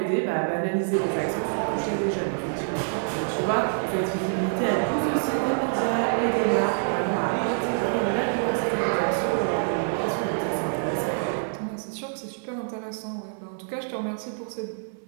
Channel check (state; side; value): silent; left; digital silence